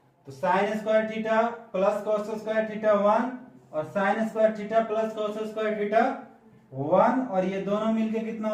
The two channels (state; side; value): identical; both; correlation 1.00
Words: तो sine square theta plus cos square theta 1 और sine square theta plus cos square theta 1, और ये दोनों मिलके कितना